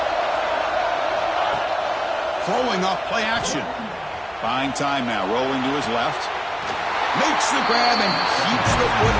Throwing off play action. Buying time now. Rolling to his left. Makes the grab and keeps the foot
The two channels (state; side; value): identical; both; correlation 1.00